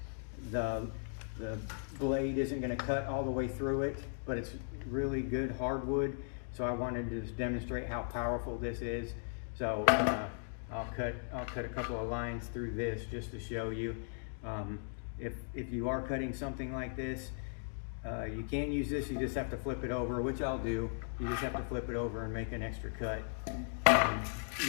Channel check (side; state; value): right; silent; digital silence